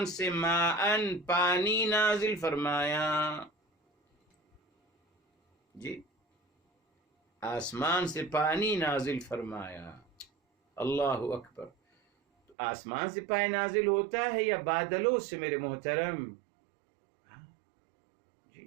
سے، ماءً، پانی نازل فرمایا. جی آسمان سے پانی نازل فرمایا. اللہ اکبر. آسمان سے پانی نازل ہوتا ہے یا بادلوں سے میرے محترم؟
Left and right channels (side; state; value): left; drops out; at 12.6 s